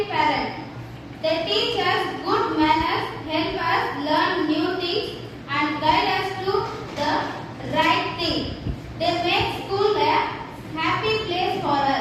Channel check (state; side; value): identical; both; correlation 1.00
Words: parent. They teach us good manners, help us learn new things and guide us to the right thing. They make school a happy place for